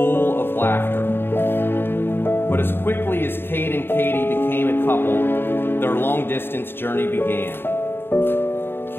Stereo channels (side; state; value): right; late; 0.11 ms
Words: of laughter. But as quickly as Kade and Kade became a couple, their long-distance journey began.